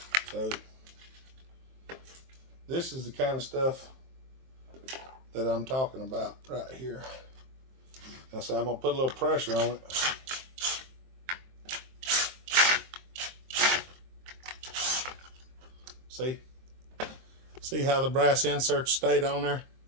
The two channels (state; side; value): late; left; 23 ms